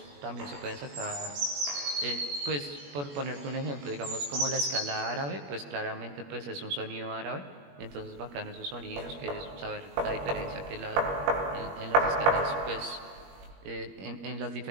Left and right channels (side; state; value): left; late; 21 ms